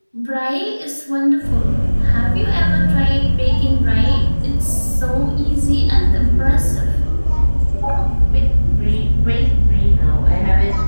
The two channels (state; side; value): inverted; both; correlation -1.00